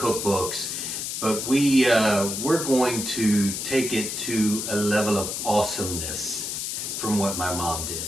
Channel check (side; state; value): left; noise; hiss, 4 dB below the sound